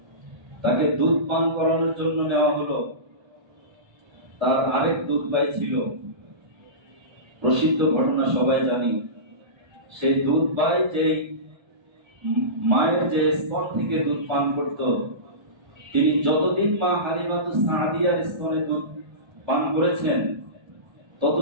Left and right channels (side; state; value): left; late; 1.3 ms